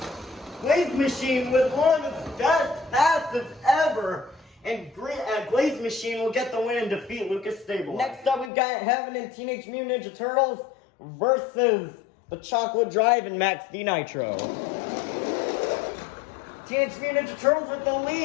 Glaze Machine with one of its best passes ever, and Glaze Machine will get the win and defeat Lucas Stabilizer. Next up, we've got Heaven and Teenage Mutant Ninja Turtles versus the Chocolate Drive and Max D Nitro. Teenage Mutant Ninja Turtles with the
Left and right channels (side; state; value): right; drops out; at 8.5 s